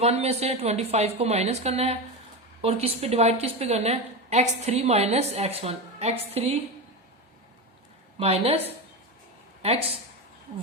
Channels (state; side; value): normal; both; correlation 0.19